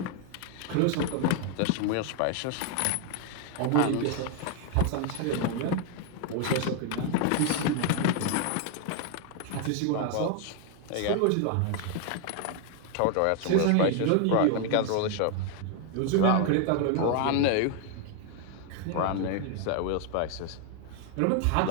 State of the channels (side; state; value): both; different; correlation 0.01